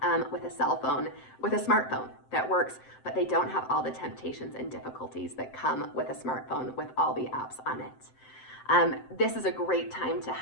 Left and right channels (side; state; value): right; late; 7.7 ms